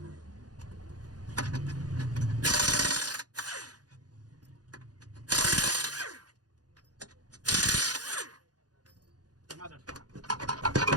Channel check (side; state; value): left; late; 0.69 ms